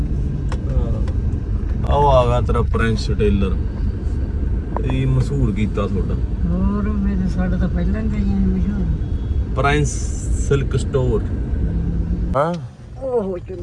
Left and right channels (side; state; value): both; identical; correlation 1.00